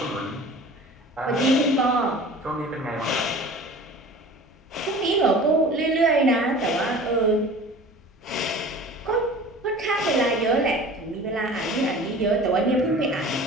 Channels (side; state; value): both; normal; correlation 0.42